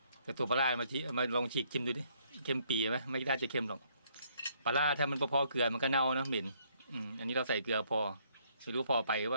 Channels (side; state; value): both; inverted; correlation -0.68